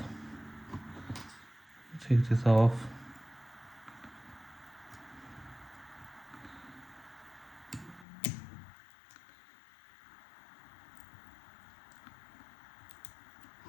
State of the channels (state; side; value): drops out; right; at 8.1 s